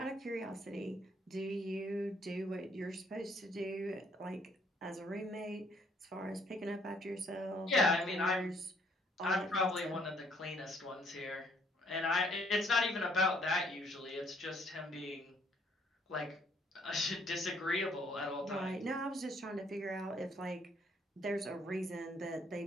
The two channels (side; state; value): both; normal; correlation 0.66